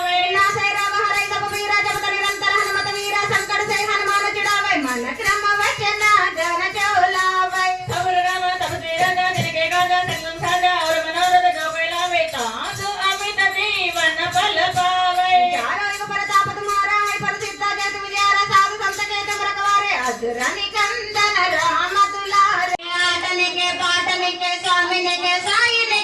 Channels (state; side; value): identical; both; correlation 1.00